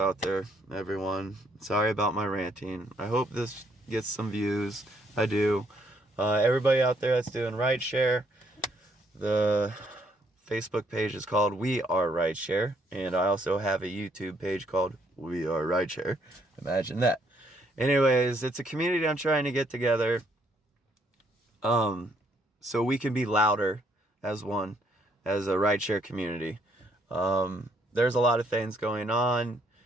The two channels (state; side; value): normal; both; correlation 0.69